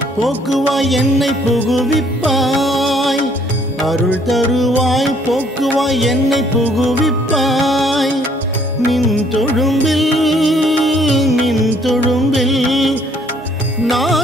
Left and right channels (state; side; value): normal; both; correlation 0.63